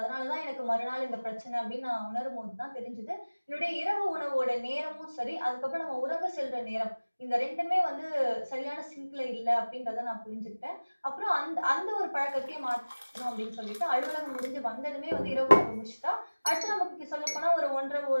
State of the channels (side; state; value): both; inverted; correlation -1.00